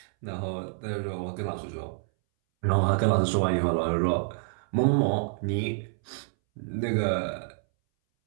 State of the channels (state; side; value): silent; left; 59 dB below the other